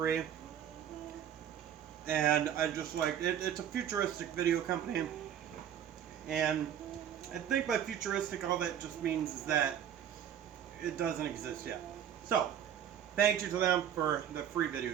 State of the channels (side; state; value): left; quieter; 9.5 dB